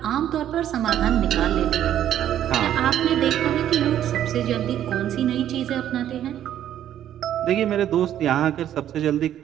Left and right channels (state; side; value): quieter; left; 11.1 dB